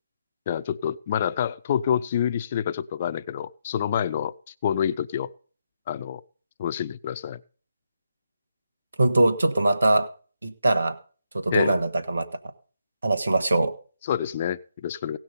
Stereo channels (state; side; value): inverted; both; correlation -0.80